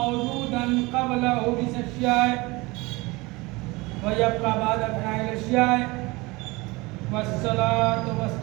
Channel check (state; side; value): quieter; left; 23.5 dB